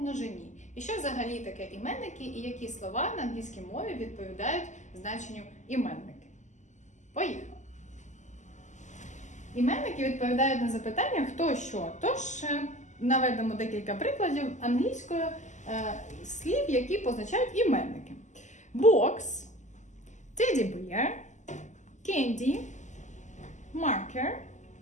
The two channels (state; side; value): late; right; 0.34 ms